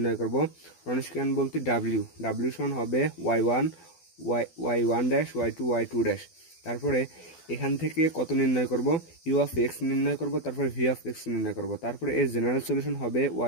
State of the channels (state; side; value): late; right; 12 ms